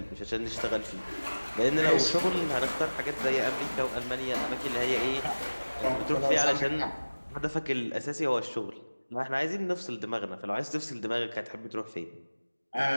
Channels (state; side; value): inverted; both; correlation -1.00